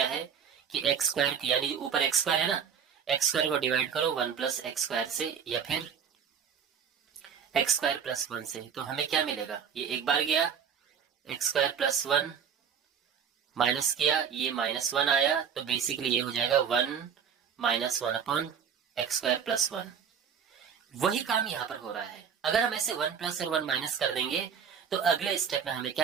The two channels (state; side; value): quieter; left; 7.4 dB